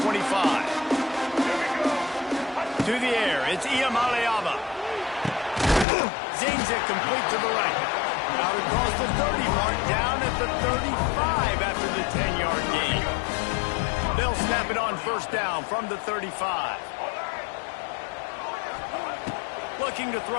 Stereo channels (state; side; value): drops out; right; at 5.9 s